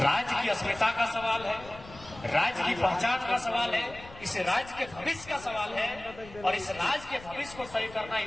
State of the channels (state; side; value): noise; left; rumble, 18 dB below the sound